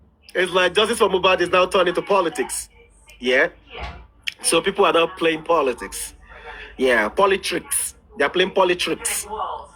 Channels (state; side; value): identical; both; correlation 1.00